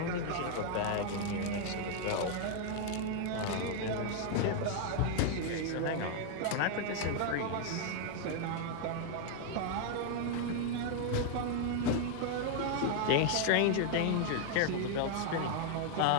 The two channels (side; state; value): both; different; correlation 0.00